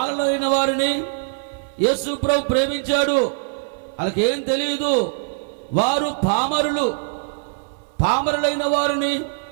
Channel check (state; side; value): silent; left; 58 dB below the other